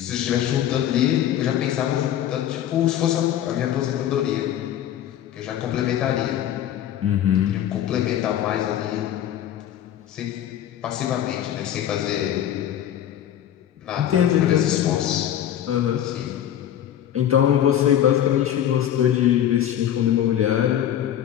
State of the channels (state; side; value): quieter; right; 10.9 dB